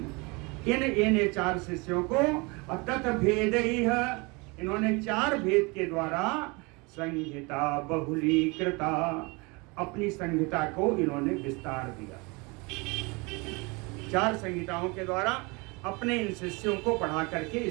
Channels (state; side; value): quieter; left; 27.5 dB